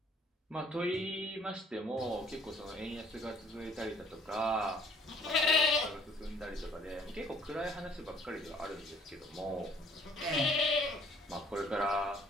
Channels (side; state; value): both; normal; correlation 0.58